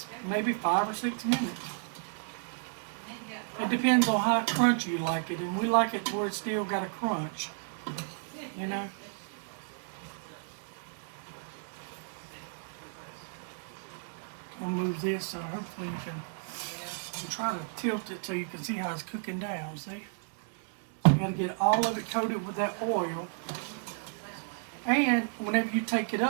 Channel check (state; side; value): silent; left; digital silence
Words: maybe 5 or 6 minutes. It depends on how crunchy you like it. And we like it where it's still got a crunch. You know? I'll move this so hopefully you can try to tilt it so you can see how it's cooking down, see? You got to get all of it coated with that oil. And whenever you take it